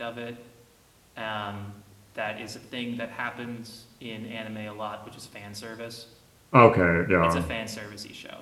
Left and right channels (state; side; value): identical; both; correlation 1.00